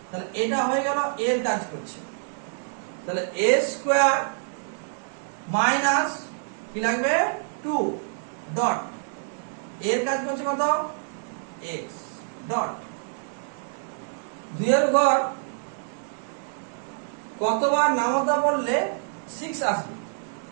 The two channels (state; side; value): silent; left; 60 dB below the other